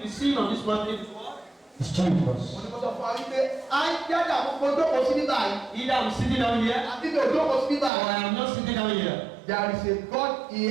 seen on this mountain is what? It's Jesus. Mo ní kó sọ fún wa wípé à ń jáde àkókò jókòó sí nígbà yìí. Either I'm sitting down here Àbí mi ò jókòó sí nígbà or yìí. I am not sitting down here. There is a God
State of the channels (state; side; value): drops out; left; at 7.9 s